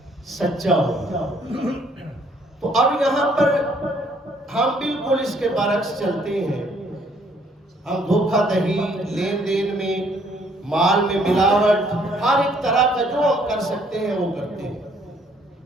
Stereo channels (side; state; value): both; normal; correlation 0.64